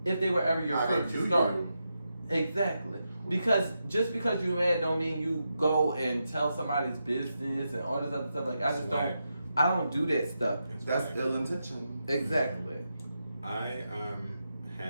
if they were ever your friend to start. Exactly. Because just because you're mad don't mean you go and tell somebody's business and all this other stuff. Like I don't do that stuff. That's ill intention. Exactly. I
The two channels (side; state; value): both; inverted; correlation -0.86